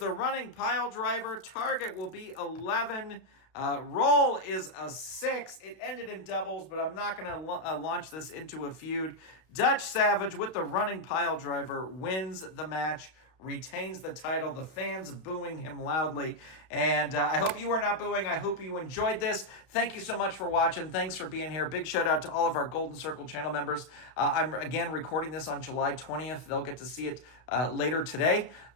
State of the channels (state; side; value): late; right; 31 ms